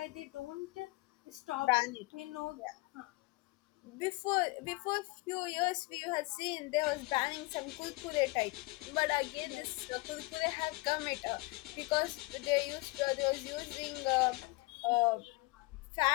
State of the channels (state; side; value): quieter; right; 24.0 dB